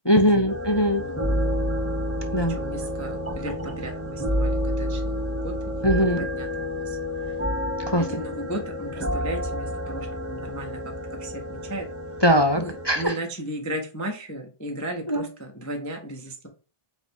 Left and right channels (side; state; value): right; late; 1.2 ms